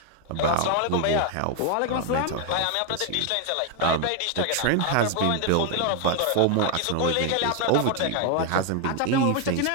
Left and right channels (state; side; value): different; both; correlation 0.01